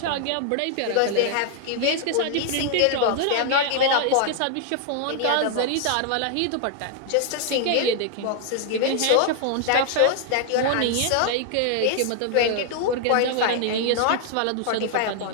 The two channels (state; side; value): different; both; correlation 0.00